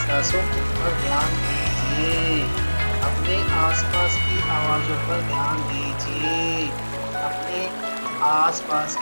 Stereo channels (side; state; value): both; inverted; correlation -1.00